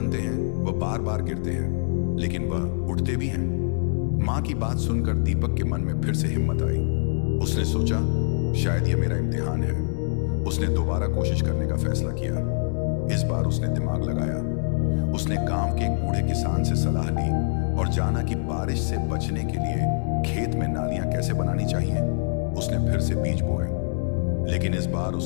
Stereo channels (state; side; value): silent; right; digital silence